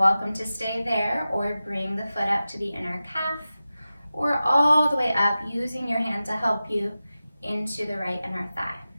to stay there or bring the foot up to the inner calf or all the way up using your hand to help you into the right inner thigh.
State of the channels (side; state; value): both; inverted; correlation -0.94